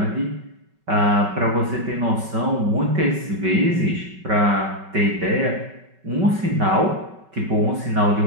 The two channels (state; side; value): late; left; 5.3 ms